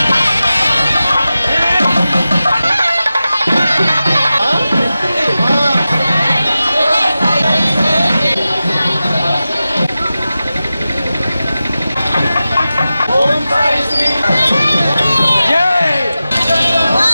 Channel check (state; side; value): inverted; both; correlation -0.94